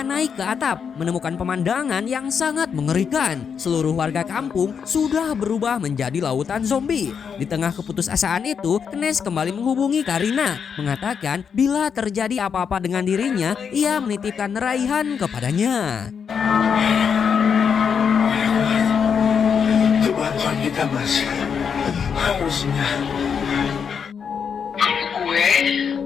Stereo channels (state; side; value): quieter; right; 6.8 dB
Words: naik ke atap, menemukan pemandangan yang sangat mengerikan. Seluruh warga kampung sudah berubah menjadi lautan zombie. Di tengah keputusasaan itu, Kenes kembali menghubungi Karina, mengatakan bila terjadi apa-apa dengan dirinya, ia menitipkan Raihan kepadanya. Itu bantuan kita, Mas. Harusnya. Gue